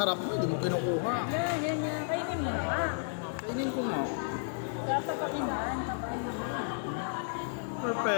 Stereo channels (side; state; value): right; silent; digital silence